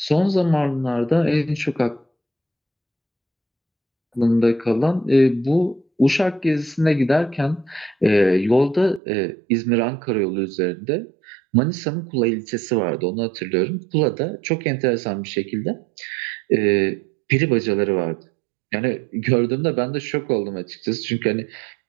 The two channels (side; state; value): left; drops out; at 9.0 s